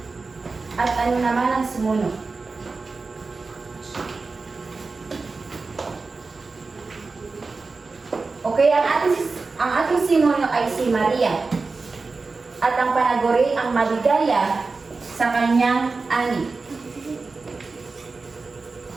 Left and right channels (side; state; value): left; quieter; 4.0 dB